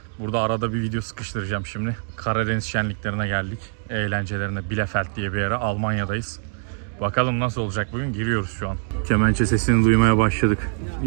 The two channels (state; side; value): silent; left; 63 dB below the other